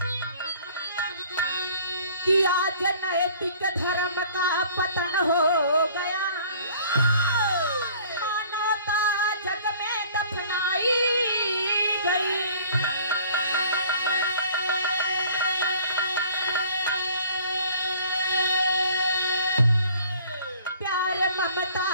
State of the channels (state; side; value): inverted; both; correlation -0.52